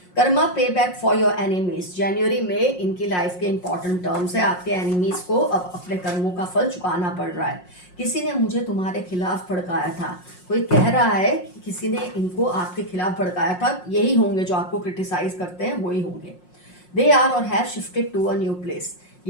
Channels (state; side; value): late; right; 5.6 ms